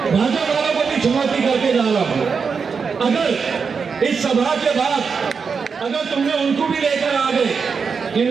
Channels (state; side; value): quieter; left; 5.6 dB